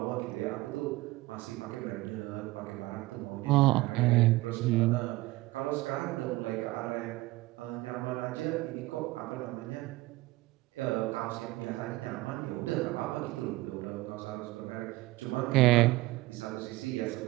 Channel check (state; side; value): quieter; left; 19.6 dB